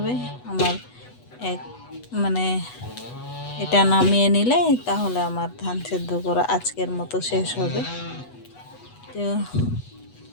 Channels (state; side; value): late; right; 8.1 ms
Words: আমার এক মানে এটা নামিয়ে নিলে তাহলে আমার ধান সেদ্ধ করা আজকের মতো শেষ হবে। তো